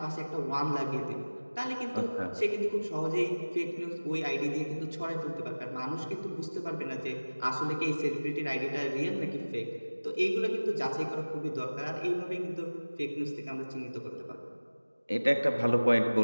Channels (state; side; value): inverted; both; correlation -1.00